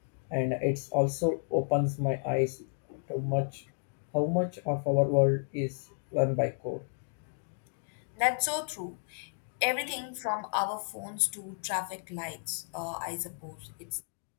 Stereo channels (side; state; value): right; silent; digital silence